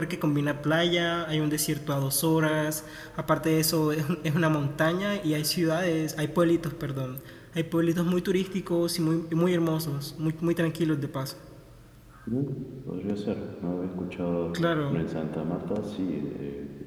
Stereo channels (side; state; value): both; identical; correlation 1.00